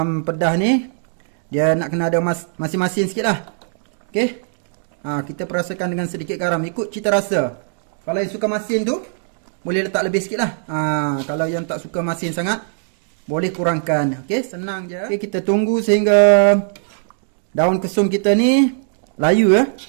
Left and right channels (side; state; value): left; silent; digital silence